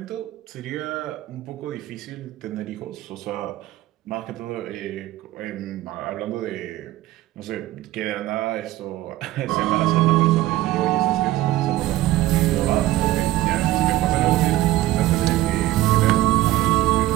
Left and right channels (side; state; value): left; quieter; 15.7 dB